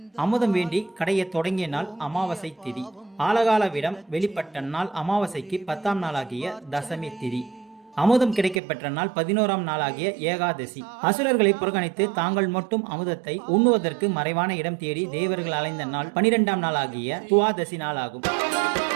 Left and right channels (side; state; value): left; drops out; at 8.6 s